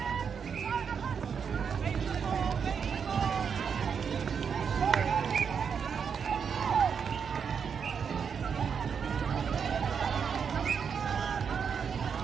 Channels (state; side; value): quieter; left; 6.7 dB